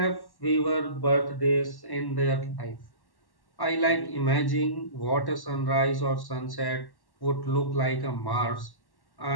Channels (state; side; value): late; right; 1.1 ms